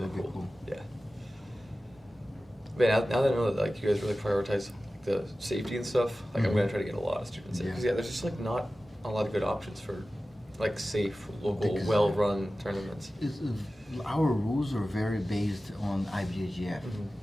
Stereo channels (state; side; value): normal; both; correlation 0.95